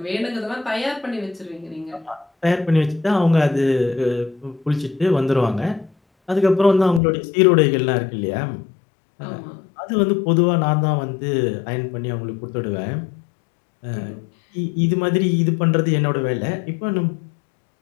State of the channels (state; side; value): drops out; right; at 7.0 s